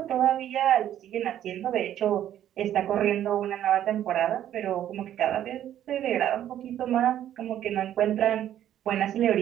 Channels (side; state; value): left; quieter; 11.3 dB